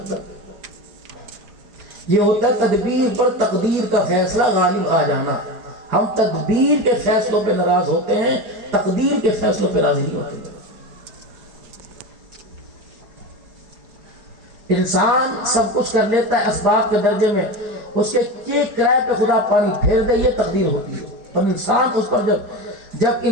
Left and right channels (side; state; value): left; late; 4.8 ms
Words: یہ ہوتا ہے تدبیر پر تقدیر کا فیصلہ غالب آ جانا۔ ہم تدبیر کے فیصلوں پہ ناراض ہوتے ہیں، تقدیر کے فیصلوں پہ راضی نہیں ہوتے۔ انسان سب کچھ کر لیتا ہے اسباب کے درجے میں، اس کے کرائے پہ خدا پانی پھیر دے، یہ تقدیر ہوتی ہے۔ اور انسان اس پر جب